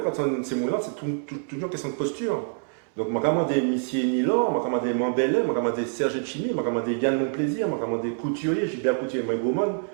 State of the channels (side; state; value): left; silent; 61 dB below the other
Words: on ces mots-là, c'est toujours une question de posture. Donc, je vais demander Missier Nilor, je vais demander Mambellet, je vais demander Serge Chimi, je vais demander Yann Monplaisir, je vais demander Couturier, Gilbert Couturier, Mike Goman,